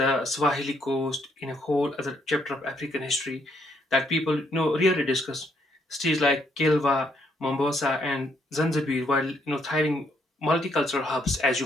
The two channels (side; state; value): both; normal; correlation 0.72